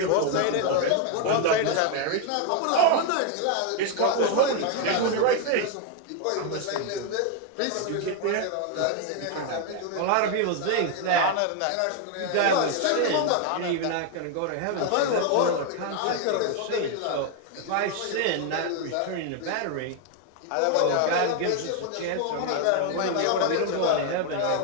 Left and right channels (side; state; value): both; different; correlation 0.01